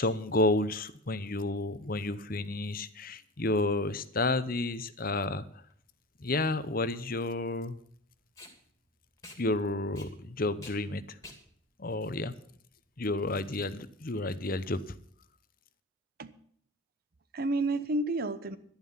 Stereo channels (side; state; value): both; normal; correlation 0.32